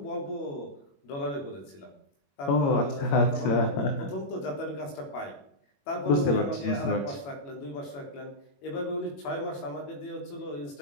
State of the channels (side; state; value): right; late; 21 ms